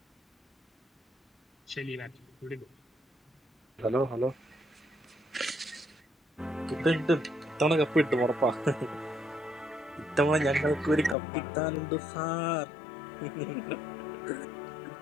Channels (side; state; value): right; drops out; at 11.2 s